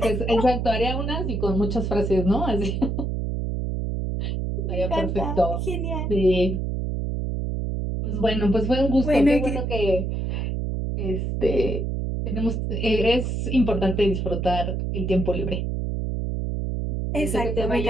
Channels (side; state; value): right; noise; hum, 1 dB below the sound